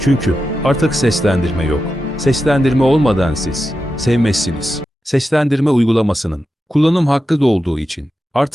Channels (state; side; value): normal; both; correlation 0.90